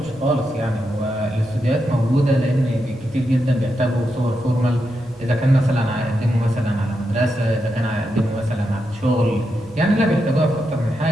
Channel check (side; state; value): left; noise; rumble, 27 dB below the sound